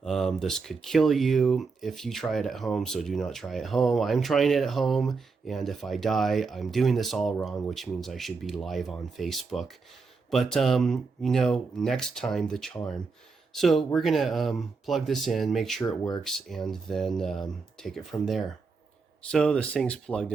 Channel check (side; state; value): left; quieter; 4.6 dB